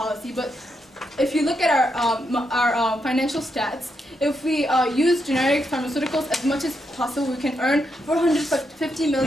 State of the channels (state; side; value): normal; both; correlation 0.81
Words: But if you look at our financial stats, if we use generic pharmaceuticals as much as possible, we can earn $450